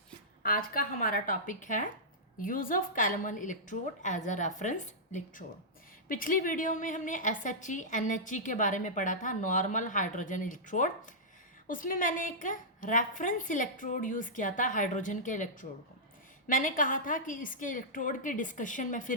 आज का हमारा टॉपिक है use of calomel electrode as a reference electrode. पिछली वीडियो में हमने SHE NHE के बारे में पढ़ा था, नॉर्मल हाइड्रोजन इलेक्ट्रोड। उसमें मैंने एक रेफरेंस इलेक्ट्रोड यूज़ किया था हाइड्रोजन के इलेक्ट्रोड को। मैंने कहा था कि इसके इलेक्ट्रोड के डिस्कशन में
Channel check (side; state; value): both; normal; correlation -0.13